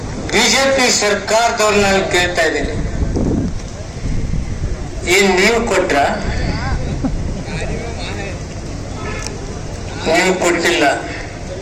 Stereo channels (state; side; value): identical; both; correlation 1.00